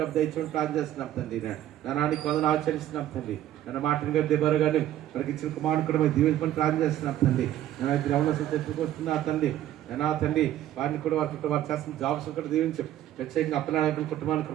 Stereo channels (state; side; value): quieter; left; 12.6 dB